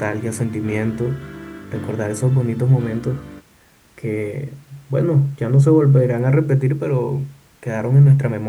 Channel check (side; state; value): both; identical; correlation 1.00